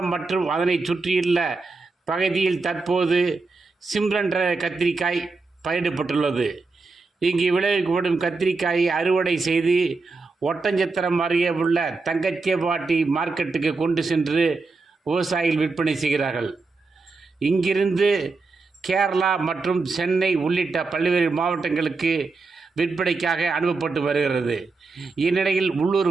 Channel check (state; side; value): quieter; left; 3.9 dB